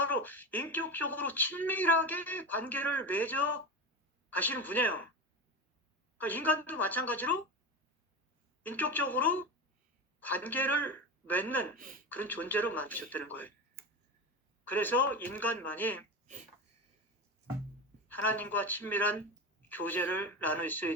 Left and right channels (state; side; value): normal; both; correlation 0.22